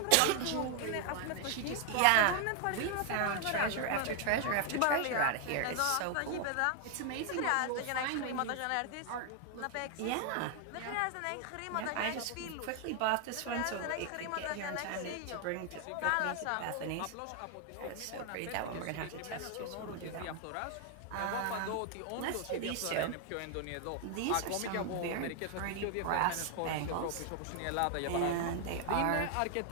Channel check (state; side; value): different; both; correlation 0.00